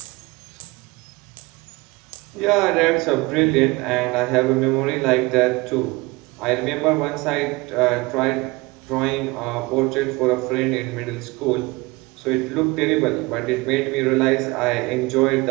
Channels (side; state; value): left; quieter; 23.4 dB